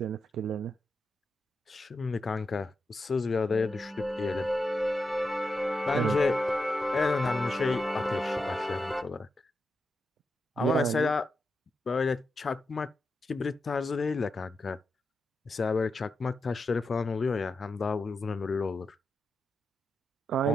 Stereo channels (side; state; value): both; normal; correlation 0.87